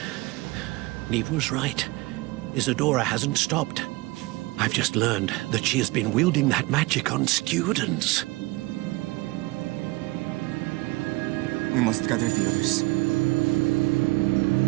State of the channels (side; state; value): left; quieter; 22.1 dB